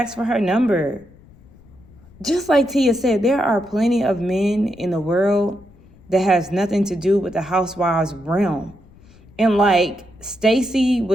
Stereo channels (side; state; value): left; noise; rumble, 25 dB below the sound